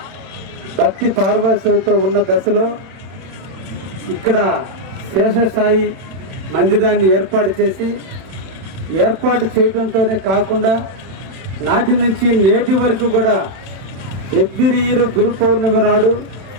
భక్తి పారవశ్యంతో ఉన్న దశలో ఇక్కడ శేషసాయి మందిరాన్ని ఏర్పాటు చేయడంతోనే కాకుండా నాటి నుంచి నేటి వరకు కూడా ఎవ్రీ ఇయర్ గురు పౌర్ణమి నాడు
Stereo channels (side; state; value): left; late; 31 ms